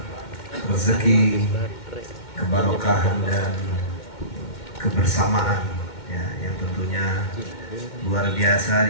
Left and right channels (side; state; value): right; late; 2.1 ms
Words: rezeki, keberkahan dan kebersamaan, ya, yang tentunya luar biasa